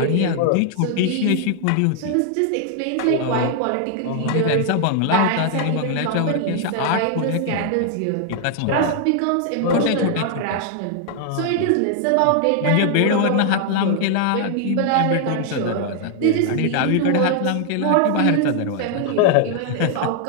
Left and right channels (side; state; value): both; different; correlation 0.00